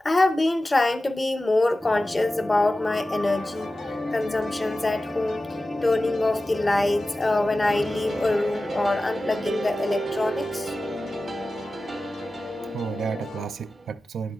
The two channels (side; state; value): both; normal; correlation 0.95